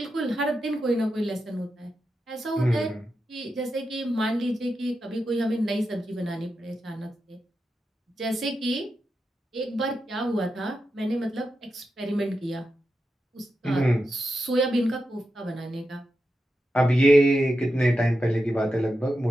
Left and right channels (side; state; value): both; normal; correlation 0.88